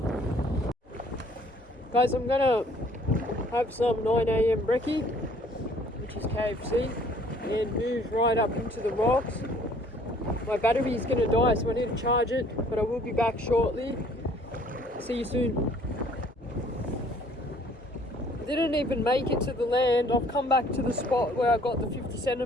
Guys, I'm gonna have some 9 AM brekkie, which is KFC, and move right up into the rocks. My battery is gonna die, so I need to charge it, but I will be back shortly. See you soon. I didn't even make it to the land. I've come back to the spot where I got the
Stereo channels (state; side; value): normal; both; correlation 0.58